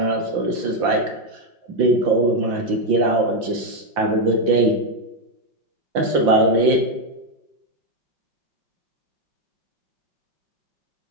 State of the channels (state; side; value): late; left; 5.8 ms